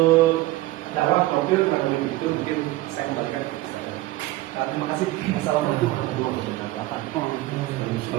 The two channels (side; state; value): left; quieter; 17.7 dB